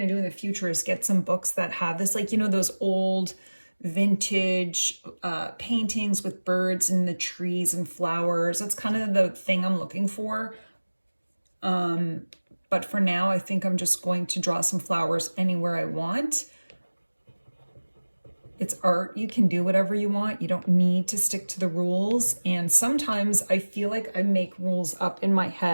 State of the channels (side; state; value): both; inverted; correlation -1.00